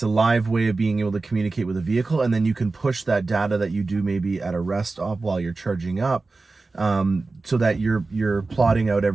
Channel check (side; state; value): left; quieter; 3.6 dB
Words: a live way of being able to communicate with a vehicle, and then you can push that data that you do maybe at a rest stop while you're charging up, so that you're plotting out